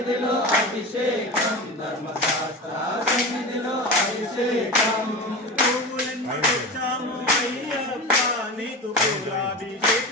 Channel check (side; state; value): both; normal; correlation 0.27